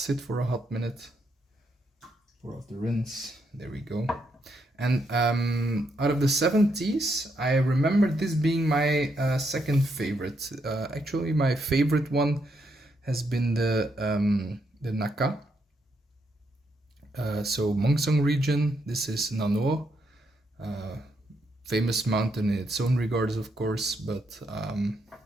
for a hot minute. Pour off the rinse. There we go. And out of the 7 teas, I remember this being my second favorite. Actually, my favorite one has been the Naka. So Mongsong region. This is Nano, famous mountain in its own regards, of course. But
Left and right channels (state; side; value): normal; both; correlation 0.78